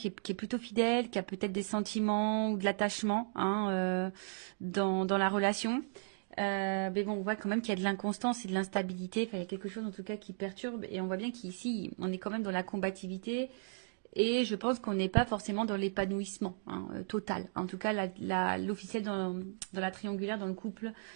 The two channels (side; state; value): left; silent; digital silence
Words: est plutôt fidèle, qui a peut-être des sentiments ou de l'attachement hein, dans la relation. Mais bon, on voit quand même qu'il y a de l'inconstance et de l'instabilité. Enfin, il y a quelque chose en tout cas qui perturbe. Et on voit bien qu'ici, on est quand même dans la combativité. Et je pense qu'on n'est pas forcément dans l'épanouissement hein, total. En tout cas, l'officiel dans la triangulaire, dans le couple,